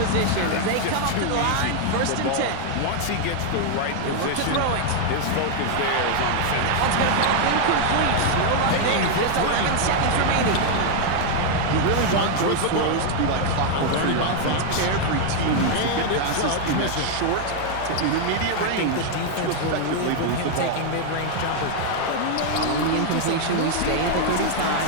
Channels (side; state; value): both; different; correlation 0.00